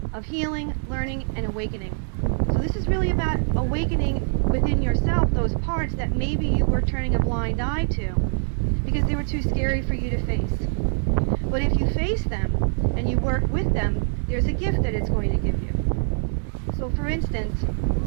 of healing, learning, and awakening. So this is really about awakening within yourself those parts that maybe you were turning a blind eye to because they were too scary for you to face. But if you face them and you work with them, there's a gift that it's going to give you. So for instance,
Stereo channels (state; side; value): silent; left; digital silence